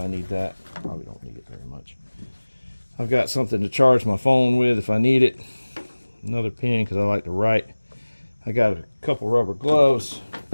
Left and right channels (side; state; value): both; inverted; correlation -1.00